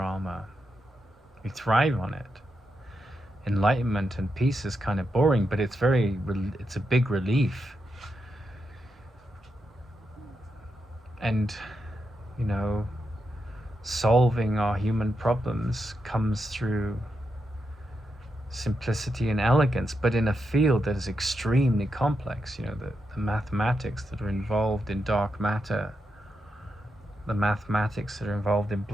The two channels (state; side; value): normal; both; correlation 0.85